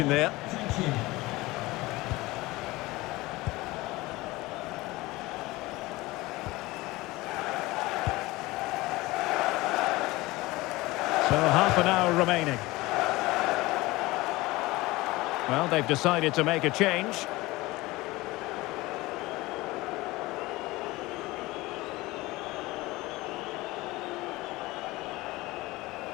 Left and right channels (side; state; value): right; quieter; 20.4 dB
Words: there. So half an hour remaining. Well, they've decided to make a change.